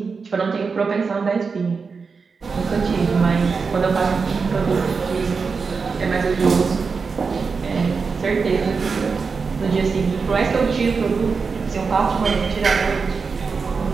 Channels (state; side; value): quieter; left; 5.0 dB